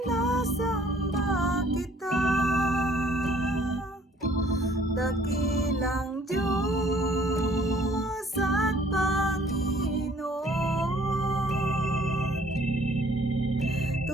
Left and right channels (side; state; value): both; normal; correlation 0.58